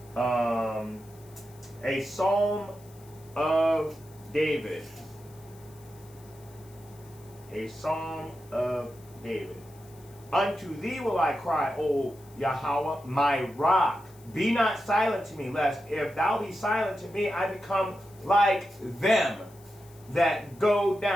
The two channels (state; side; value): noise; left; hiss, 26 dB below the sound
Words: A Psalm of David. A Psalm of David. Unto thee will I cry, O Yahweh, my rock. Be not silent to me, lest if thou be silent to me, I become like them that go